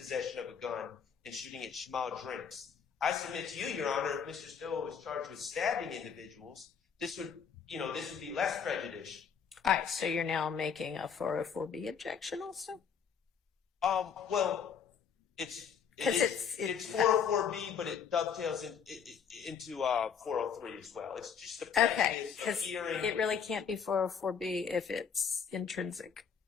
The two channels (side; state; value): right; quieter; 7.0 dB